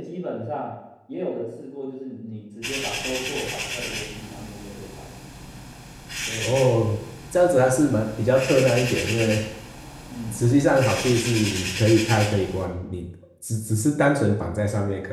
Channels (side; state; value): both; identical; correlation 1.00